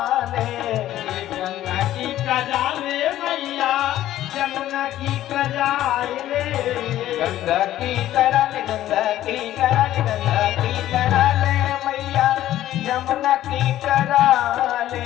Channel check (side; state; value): right; quieter; 13.4 dB